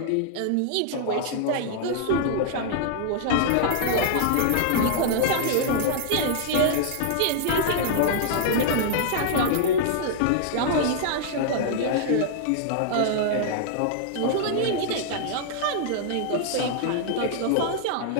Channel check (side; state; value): both; different; correlation -0.01